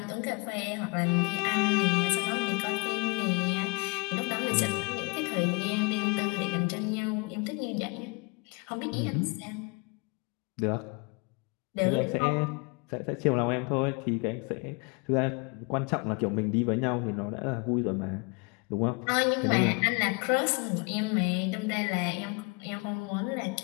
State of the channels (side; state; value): right; quieter; 30.7 dB